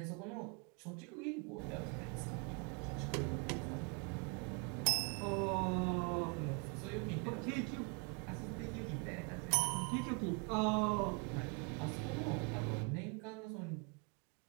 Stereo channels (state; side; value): quieter; left; 33.8 dB